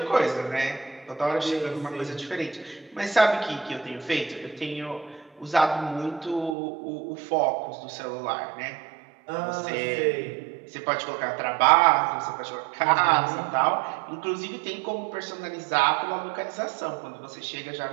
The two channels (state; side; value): drops out; left; at 6.6 s